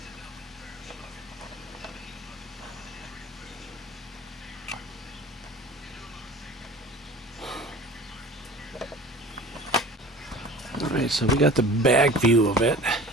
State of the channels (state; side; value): normal; both; correlation 0.42